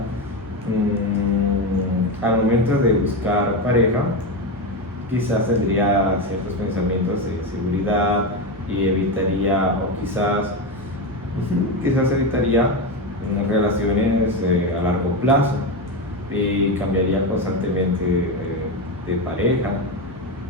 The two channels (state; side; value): normal; both; correlation 0.14